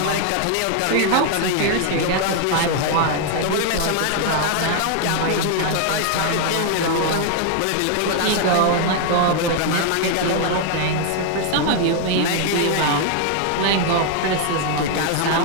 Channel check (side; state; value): both; different; correlation 0.00